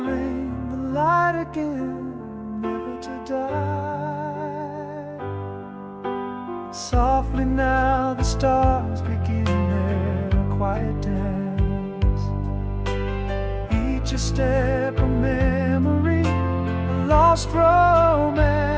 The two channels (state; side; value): identical; both; correlation 1.00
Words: rain, the light again, never to die. Softly now the stars begin their quiet dance, each a step of memory, a lost romance.